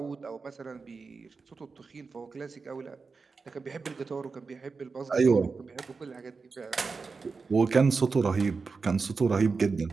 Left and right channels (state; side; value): quieter; left; 4.6 dB